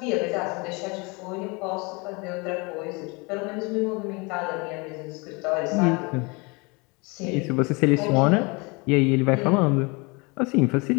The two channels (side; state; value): right; quieter; 28.4 dB